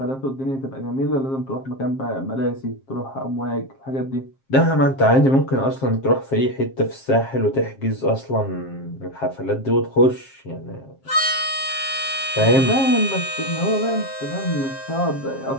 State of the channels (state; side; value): late; right; 7.5 ms